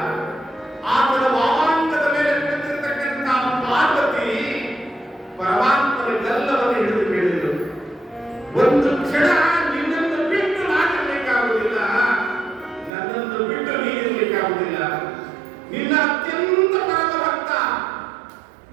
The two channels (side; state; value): left; drops out; at 12.9 s